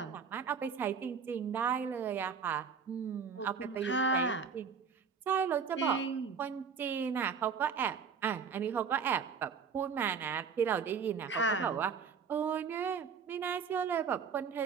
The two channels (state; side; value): quieter; left; 6.1 dB